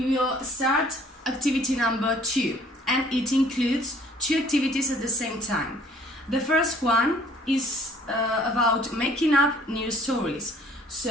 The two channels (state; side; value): normal; both; correlation 0.56